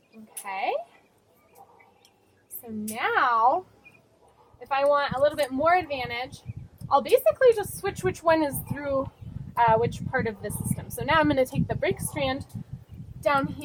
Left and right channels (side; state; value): both; identical; correlation 1.00